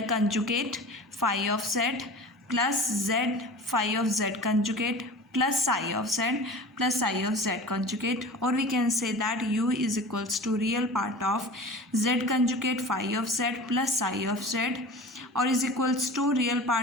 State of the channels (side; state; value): both; normal; correlation 0.37